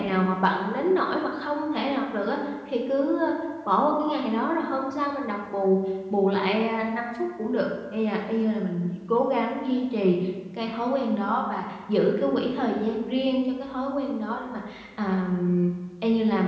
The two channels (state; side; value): identical; both; correlation 1.00